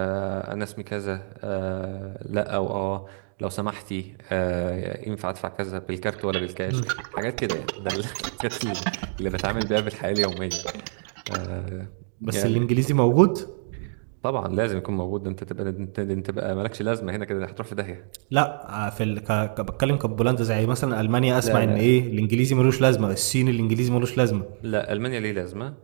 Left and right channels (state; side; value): silent; left; digital silence